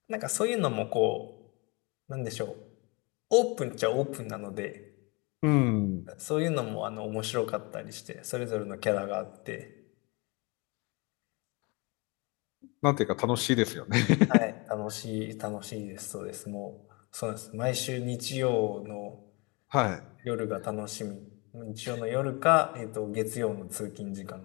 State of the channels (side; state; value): right; quieter; 28.4 dB